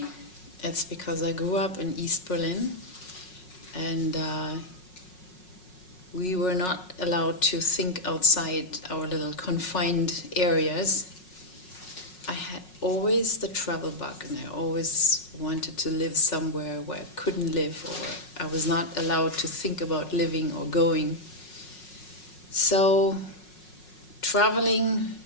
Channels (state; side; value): late; right; 5.5 ms